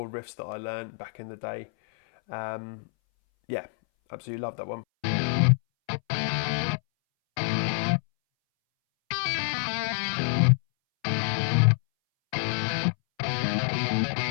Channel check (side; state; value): right; silent; 60 dB below the other